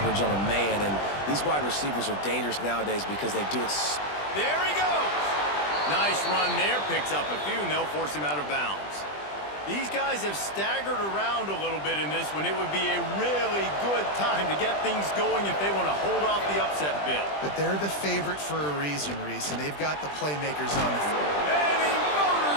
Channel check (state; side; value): late; right; 20 ms